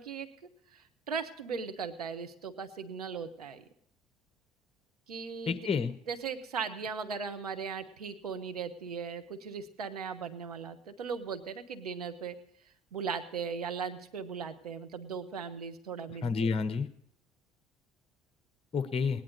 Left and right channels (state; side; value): normal; both; correlation 0.52